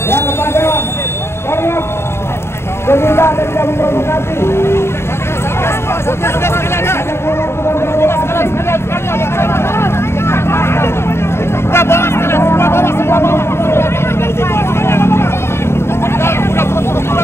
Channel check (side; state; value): right; late; 0.12 ms